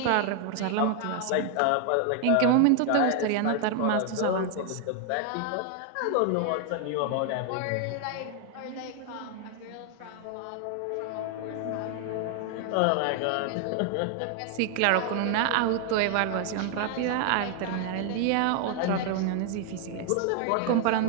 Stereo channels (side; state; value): both; different; correlation 0.00